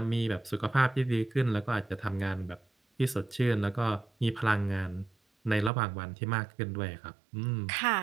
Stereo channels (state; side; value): drops out; left; at 5.7 s